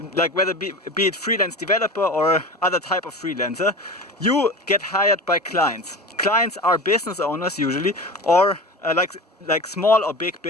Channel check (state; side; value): normal; both; correlation 0.31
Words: like whether be it freelance developer or other type of freelancer, you get hired by clients. Clients are business owners usually, or like small or big